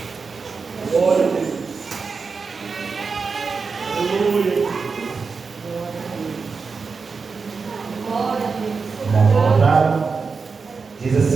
Glória a Deus. Aleluia. Diz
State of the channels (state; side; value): quieter; left; 4.9 dB